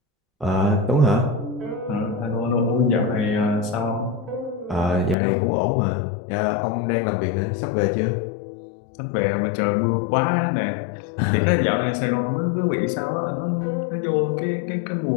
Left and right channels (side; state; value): right; drops out; at 5.2 s